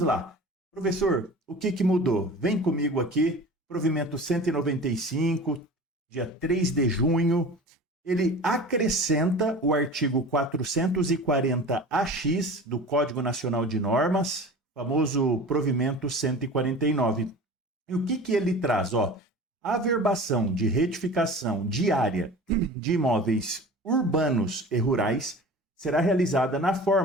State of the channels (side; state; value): both; normal; correlation 0.38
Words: lá. Professor, o que mudou? Vem comigo aqui, provimento 195, dia 3 de junho, ele acrescenta o artigo 440-AX do Código Nacional de Normas, famoso provimento 149. E o que ele traz? A averbação de retificação de área de imóveis urbanos e rurais será realizada na